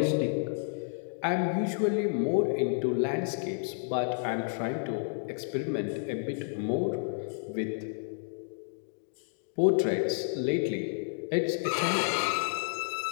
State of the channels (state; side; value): silent; right; digital silence